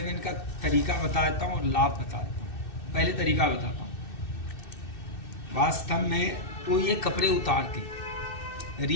का तरीका बताता हूँ और लाभ बताता हूँ। पहले तरीका बताता हूँ। वास्तव में तो ये कपड़े उतार के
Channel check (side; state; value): right; late; 2.6 ms